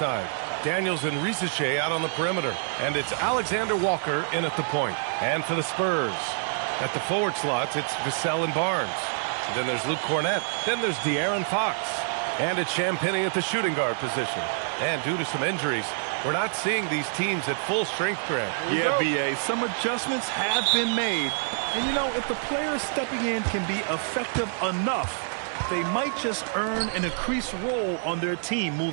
Daniels and Risache out on the perimeter. And it's Alexander Walker in at the point. And for the Spurs, at the forward slots, it's Vassell and Barnes. Then there's Luke Cornett. Then there's De'Aaron Fox. And it's Champagnie at the shooting guard position. And due to some injuries, we're not seeing these teams at full strength, Grant. Yeah, B.A., some adjustments have been made. And, you know, if the players stepping in can be effective enough, they might just earn an increased role on their team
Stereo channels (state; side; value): silent; left; digital silence